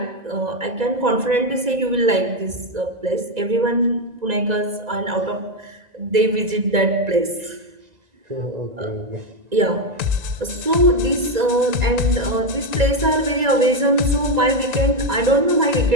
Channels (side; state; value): left; late; 1.9 ms